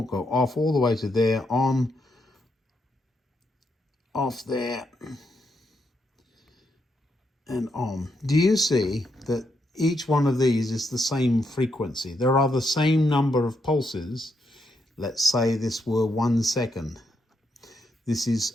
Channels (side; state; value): both; normal; correlation 0.80